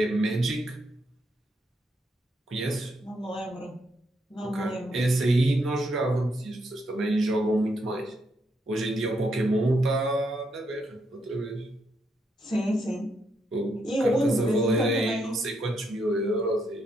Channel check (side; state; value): both; normal; correlation 0.78